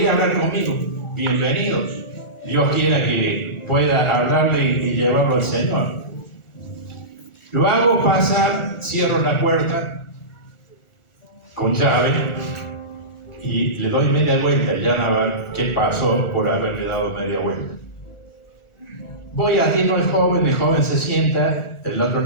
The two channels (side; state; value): right; late; 1.4 ms